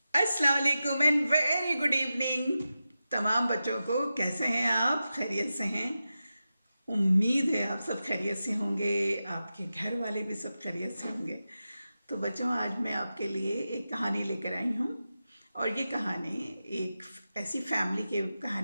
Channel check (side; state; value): both; inverted; correlation -0.92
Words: अस्सलाम वालेकुम and very good evening तमाम बच्चों को। कैसे हैं आप? खैरियत से हैं? उम्मीद है आप सब खैरियत से होंगे, आपके घर वाले भी सब खैरियत से होंगे। तो बच्चों, आज मैं आपके लिए एक कहानी लेकर आई हूँ और ये कहानी एक ऐसी फैमिली की